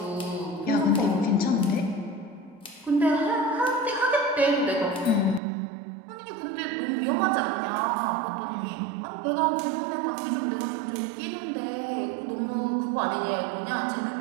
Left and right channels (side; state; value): left; drops out; at 5.4 s